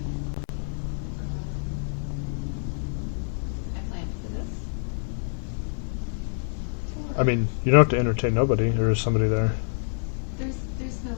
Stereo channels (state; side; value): silent; right; digital silence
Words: I planned for this tour. I mean, you don't have to entertain nobody. There is somebody there. There's